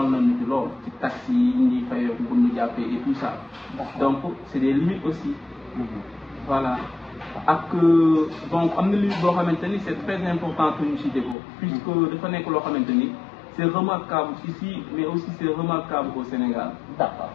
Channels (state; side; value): drops out; right; at 11.4 s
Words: nañu ci lool ci taxi yi ñuy fayoo bu ñu jàppee et tout ça. donc c'est des limites aussi. voilà ak donc am na limite boo xamante ni c'est très important que ñu cité ko. puisque dafa nekk loo xamante ni c'est remarquable ici mais aussi c'est remarquable au Sénégal. d'accord